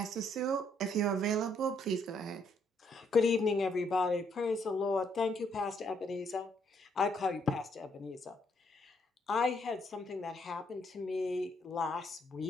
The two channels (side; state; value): both; normal; correlation 0.71